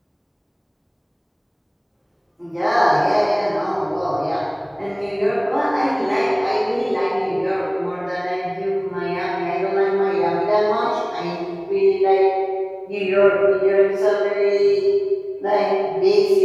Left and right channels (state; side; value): identical; both; correlation 1.00